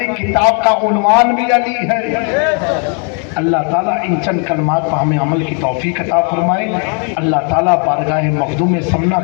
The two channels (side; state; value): right; quieter; 39.6 dB